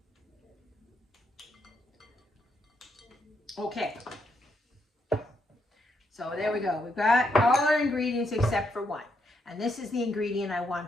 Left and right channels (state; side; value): normal; both; correlation 0.77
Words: Okay. So there we go. We've got all our ingredients except for 1. And this is the ingredient I